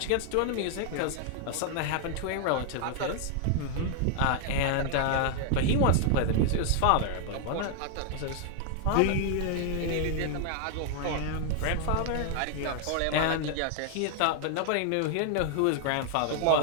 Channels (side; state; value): both; different; correlation 0.00